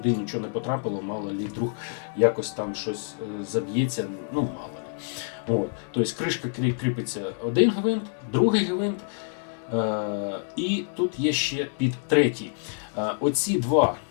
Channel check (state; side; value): silent; right; 59 dB below the other